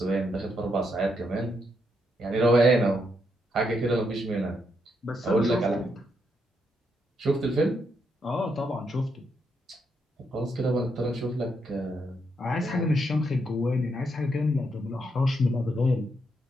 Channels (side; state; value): both; normal; correlation 0.79